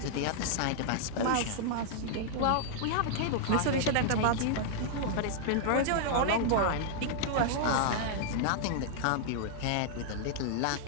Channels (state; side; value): different; both; correlation -0.01